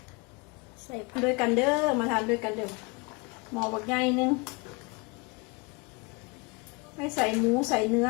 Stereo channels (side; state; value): right; quieter; 29.0 dB